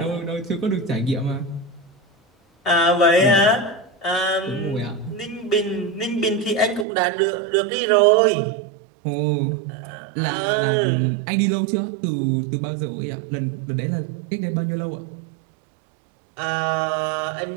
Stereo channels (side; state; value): left; drops out; at 6.9 s